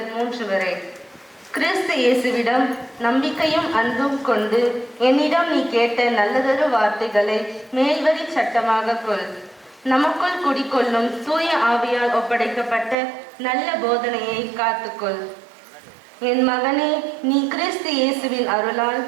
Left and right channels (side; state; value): left; drops out; at 13.0 s